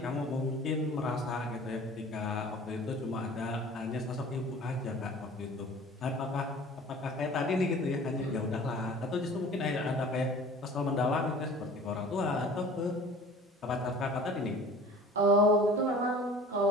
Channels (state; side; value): normal; both; correlation 0.45